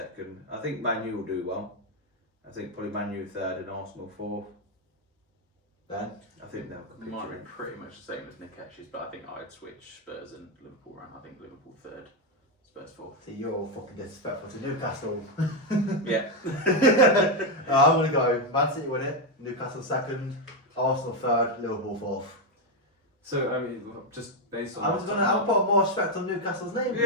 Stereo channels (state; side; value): normal; both; correlation 0.05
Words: I think Man U will do well. I think probably Man U 3rd and Arsenal 4th. Ben? I think they'll compete. Mine are pretty much the same as Nick Ash's, but I think I'd switch Spurs and Liverpool around. I think Liverpool 3rd, Spurs 4th. See, you're all fucking disrespectful to Newcastle. Yeah. I'm going to go Man City win it, Newcastle 2nd, Arsenal 3rd, Liverpool 4th. So, I mean, just based on... I'll put more respect on Newcastle's name.